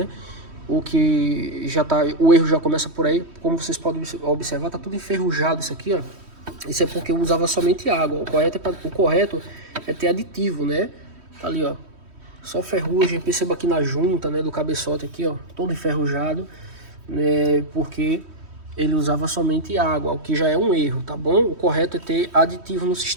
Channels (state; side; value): late; left; 3.1 ms